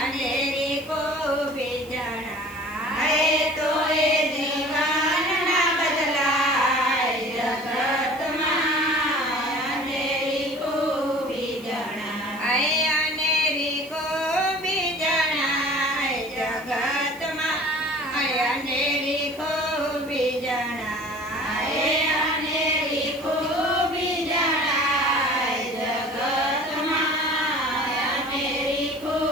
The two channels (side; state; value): right; noise; hiss, 22 dB below the sound